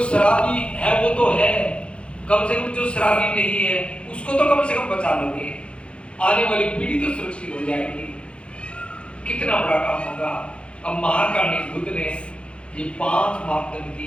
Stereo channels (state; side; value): late; right; 0.059 ms